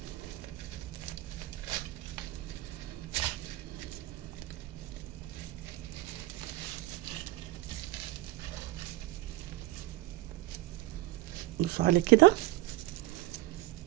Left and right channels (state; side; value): quieter; left; 17.6 dB